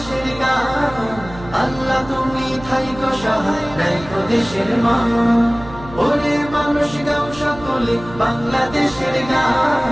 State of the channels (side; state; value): right; noise; hum, 16 dB below the sound